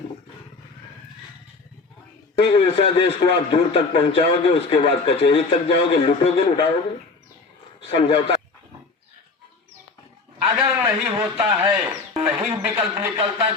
ईर्ष्या देश को आप दूर तक पहुंचाओगे, उसके बाद कचहरी तक जाओगे, लूटोगे, लुटाओगे। समझौता अगर नहीं होता है, नहीं विकल्प निकलता है,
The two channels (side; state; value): right; quieter; 4.1 dB